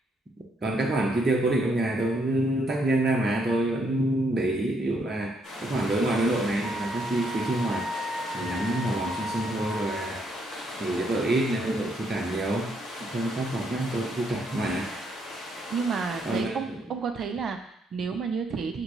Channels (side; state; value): both; normal; correlation 0.73